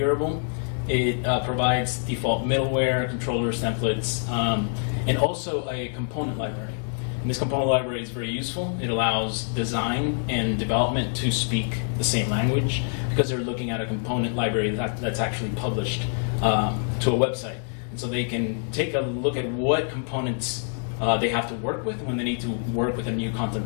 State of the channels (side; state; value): right; silent; 56 dB below the other